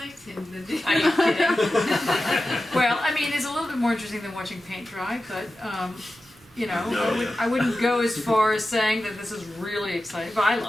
than the Are you kidding? Well, I mean, it's a little bit more interesting than watching paint dry, but you know, I wouldn't go as far as saying that this is really exciting, but I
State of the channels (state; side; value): normal; both; correlation 0.93